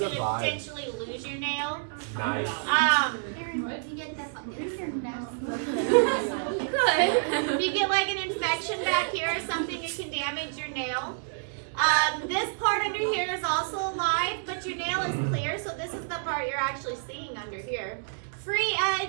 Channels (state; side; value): silent; left; digital silence